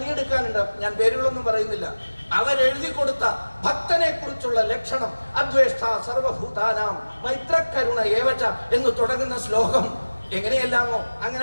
ഞാൻ പേരുകളൊന്നും പറയുന്നില്ല. അവരെഴുതി കൊടുത്ത ഭക്തനെ കുറിച്ചുള്ള ലക്ഷണം, അദ്വേഷ്ട സർവഭൂതാനാം മൈത്രകരുണ ഏവച എന്ന് തുടങ്ങുന്ന ശ്ലോകം എങ്ങനെയെല്ലാമോ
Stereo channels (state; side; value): inverted; both; correlation -1.00